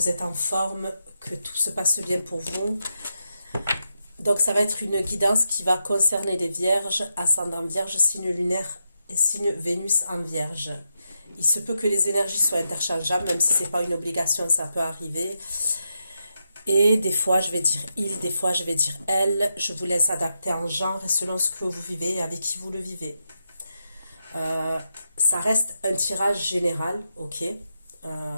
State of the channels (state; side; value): inverted; both; correlation -0.85